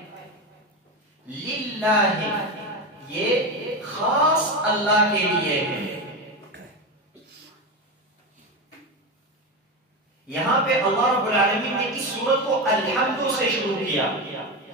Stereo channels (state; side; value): normal; both; correlation 0.18